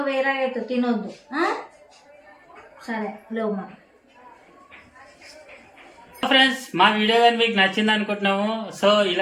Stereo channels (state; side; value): identical; both; correlation 1.00